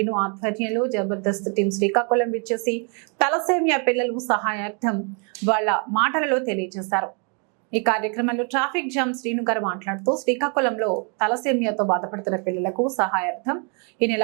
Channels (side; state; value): left; quieter; 37.6 dB